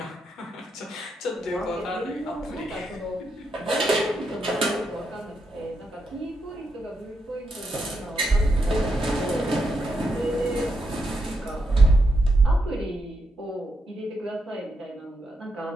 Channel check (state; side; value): normal; both; correlation 0.82